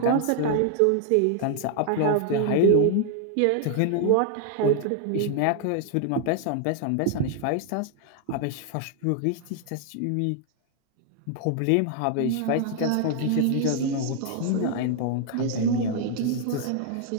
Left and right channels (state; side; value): different; both; correlation 0.00